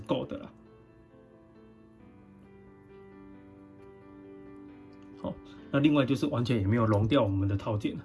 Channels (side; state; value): both; identical; correlation 1.00